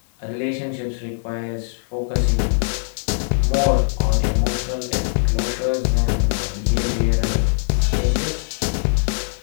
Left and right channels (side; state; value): right; silent; digital silence